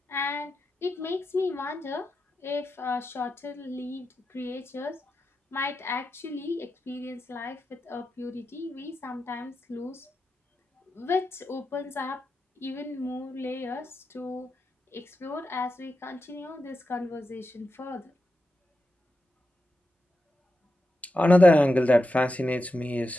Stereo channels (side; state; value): both; normal; correlation 0.89